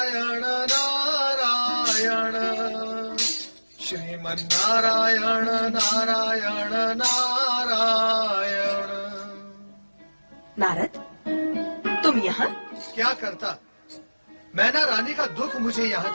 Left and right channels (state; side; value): inverted; both; correlation -1.00